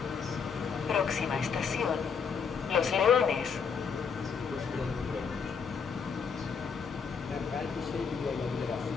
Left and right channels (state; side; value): quieter; right; 6.1 dB